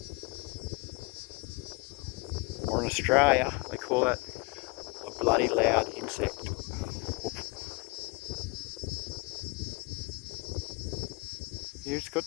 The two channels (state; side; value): quieter; right; 27.3 dB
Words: Or in Australia, they call that a bloody loud insect. Here it's got